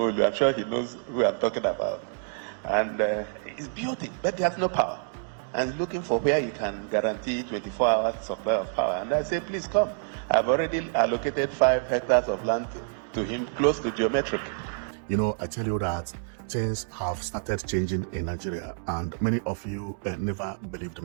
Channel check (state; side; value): silent; left; digital silence